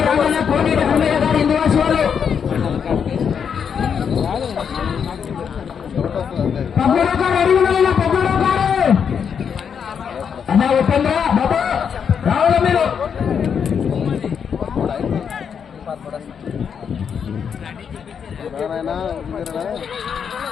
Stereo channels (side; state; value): right; quieter; 7.2 dB